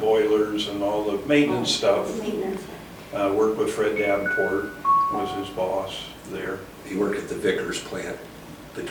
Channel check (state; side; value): identical; both; correlation 1.00